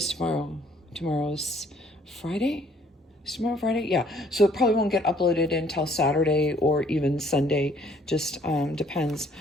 tomorrow? Tomorrow's Friday? Is tomorrow Friday? Yeah. So it probably won't get uploaded until Saturday or even Sunday. Just depends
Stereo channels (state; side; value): normal; both; correlation 0.61